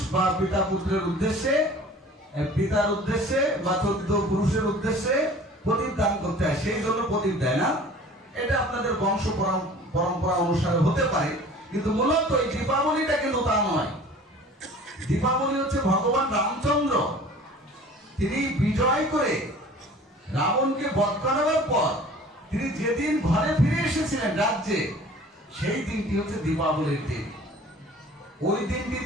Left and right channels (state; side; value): normal; both; correlation 0.46